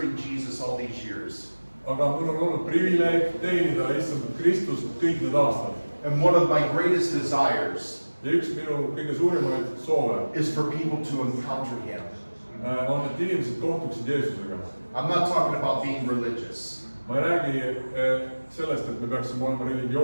Jesus all these years. Aga mul on olnud privileeg teenida issand Kristust kõik need aastad. And one of my greatest desires Ja üks minu kõige suurimaid soove is for people to encounter Him. On, et inimesed kohtuksid Jeesusega. I'm not talking about being religious. Ma ei räägi sellest, et me peaksime olema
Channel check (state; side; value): inverted; both; correlation -1.00